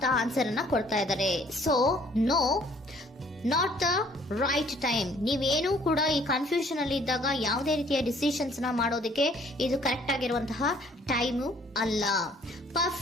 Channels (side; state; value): both; normal; correlation 0.59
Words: ಆನ್ಸರ್ ಅನ್ನ ಕೊಡ್ತಾ ಇದ್ದಾರೆ. So no, not the right time. ನೀವೇನು ಕೂಡ ಈ ಕನ್ಫ್ಯೂಷನ್ ಅಲ್ಲಿ ಇದ್ದಾಗ ಯಾವುದೇ ರೀತಿಯ ಡಿಸಿಷನ್ಸ್ ನ ಮಾಡೋದಕ್ಕೆ ಇದು ಕರೆಕ್ಟ್ ಆಗಿರುವಂತಹ ಟೈಮು ಅಲ್ಲ.